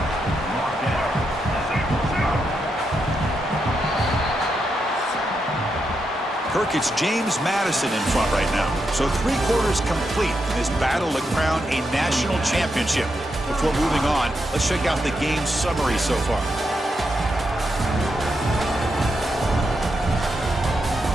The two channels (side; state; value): both; normal; correlation 0.83